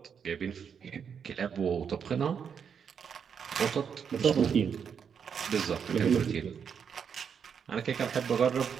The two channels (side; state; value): left; quieter; 7.1 dB